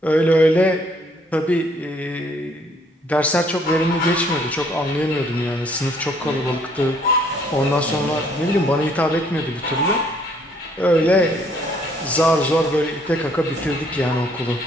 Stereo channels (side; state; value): both; normal; correlation 0.64